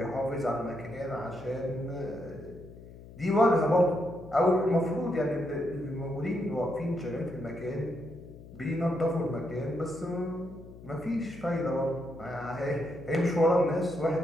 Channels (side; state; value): left; noise; hum, 17 dB below the sound